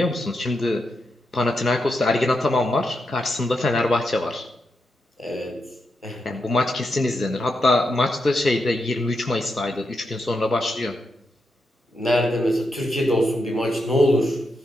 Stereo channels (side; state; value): both; normal; correlation 0.85